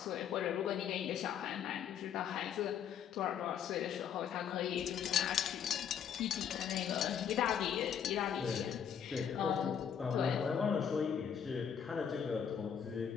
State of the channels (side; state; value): right; quieter; 8.2 dB